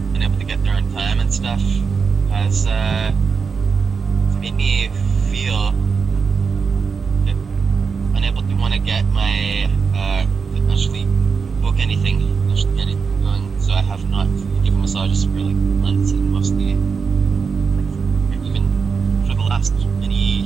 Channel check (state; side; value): quieter; left; 5.5 dB